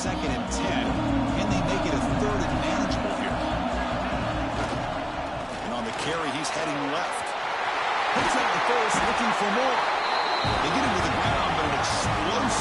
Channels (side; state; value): both; identical; correlation 1.00